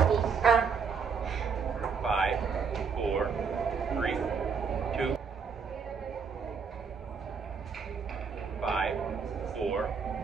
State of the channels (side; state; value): left; quieter; 5.8 dB